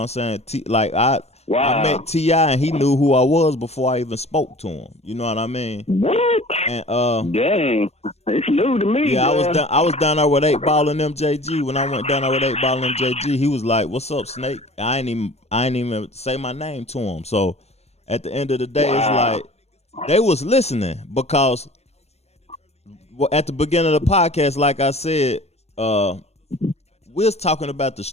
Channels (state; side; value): late; right; 0.31 ms